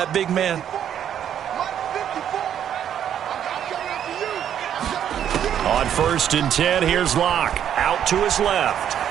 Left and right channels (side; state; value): left; quieter; 9.6 dB